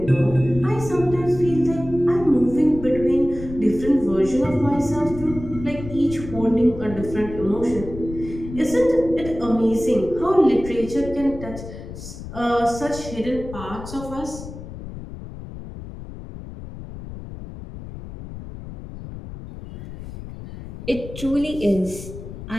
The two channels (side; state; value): left; noise; rumble, 12 dB below the sound